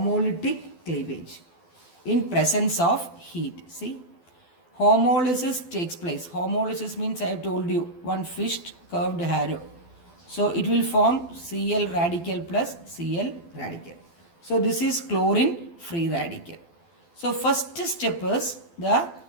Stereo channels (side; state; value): right; late; 12 ms